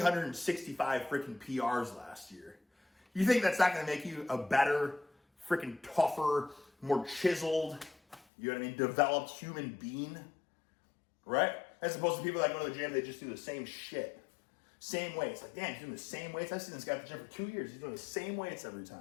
freaking PRs last year. You think that's not going to make you a better, freaking tougher, more chiseled, developed human being? Right? As opposed to people that go to the gym, they just do the same shit. Same weights. Like, damn, he's doing the same weights. I've seen this guy at the gym for 2 years. He's doing the same weights every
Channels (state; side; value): drops out; right; at 8.2 s